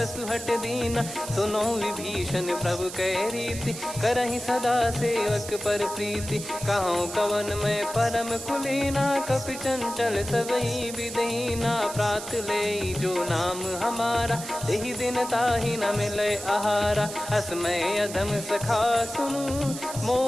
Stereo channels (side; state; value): right; noise; hiss, 10 dB below the sound